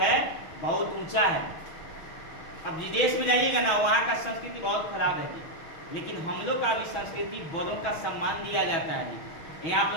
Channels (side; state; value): right; late; 6.1 ms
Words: बहुत ऊंचा है। अब विदेश में जाइएगा ना, वहाँ का संस्कृति बहुत खराब है जी। लेकिन हम लोग का भी संस्कृति, बड़ों का सम्मान दिया जाता है जी। यहाँ आप